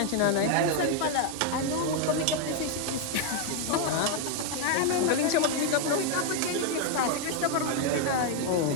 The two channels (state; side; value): different; both; correlation 0.01